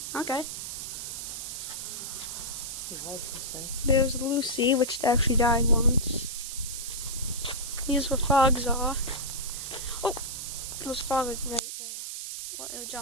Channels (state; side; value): noise; right; hiss, 6 dB below the sound